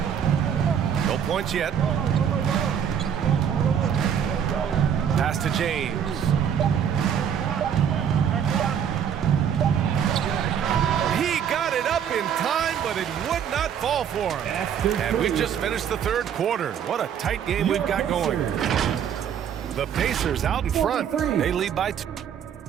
No points yet. Pass to James. He got it up in time, but it would not fall for him. And we've just finished the third quarter. What a tight game we've got going. The Pacers out in front. They lead by 2.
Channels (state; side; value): quieter; left; 8.4 dB